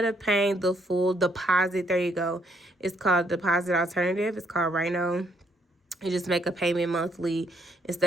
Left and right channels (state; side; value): normal; both; correlation 0.70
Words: of paying the full deposit, there you go, it's called deposit alternative. It's called Rhino. You just make a payment monthly